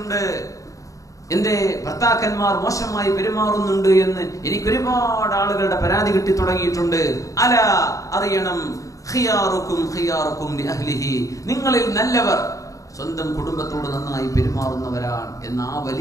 എന്റെ ഭർത്താക്കന്മാർ മോശമായി പെരുമാറുന്നുണ്ട് എന്ന് എനിക്ക് ഒരുപാട് ആളുകളുടെ പരാതി കിട്ടി തുടങ്ങിയിട്ടുണ്ട്. അല അറിയണം, ഖിയാറുക്കും ഖിയാറുക്കും ലിഅഹ്ലിഹി, നിങ്ങളിൽ നല്ലവർ സ്വന്തം കുടുംബത്തോട് നന്നായി പെരുമാറുന്നവരാണ് എന്ന ആ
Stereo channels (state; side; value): late; right; 0.16 ms